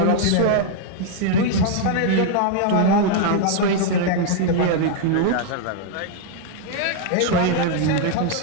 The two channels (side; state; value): both; different; correlation 0.00